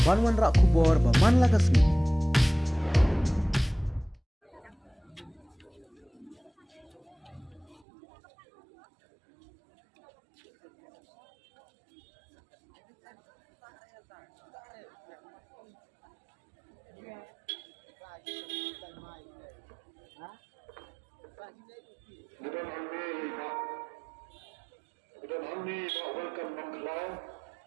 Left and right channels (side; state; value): left; drops out; at 7.8 s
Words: Banwan Rak Kubor Baman Lagasmi. Bukan hamni welcome maklau